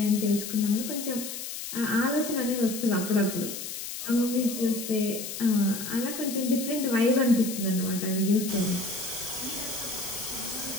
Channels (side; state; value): left; noise; hiss, 7 dB below the sound